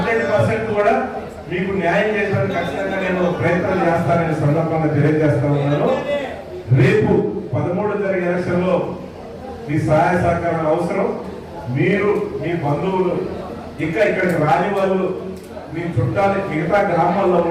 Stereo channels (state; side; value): identical; both; correlation 1.00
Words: కూడా మీకు న్యాయం చేయడానికి ఖచ్చితంగా నేను ప్రయత్నం చేస్తానని సందర్భంగా తెలియజేస్తా ఉన్నాను. రేపు 13 జరిగే ఎలక్షన్ లో మీ సహాయ సహకారం అవసరం. మీరు మీ బంధువులు ఇంకా ఇక్కడికి రాని వాళ్ళు మీ చుట్టాలు మిగతా గ్రామాల్లో